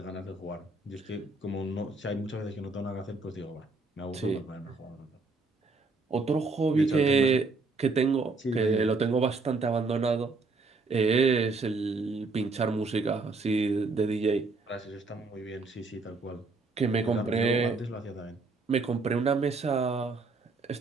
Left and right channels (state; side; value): quieter; left; 3.8 dB